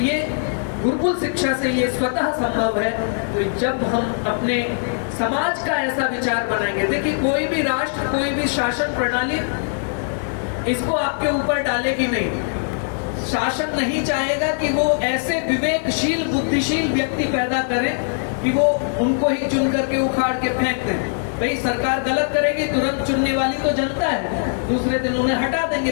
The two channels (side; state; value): right; silent; digital silence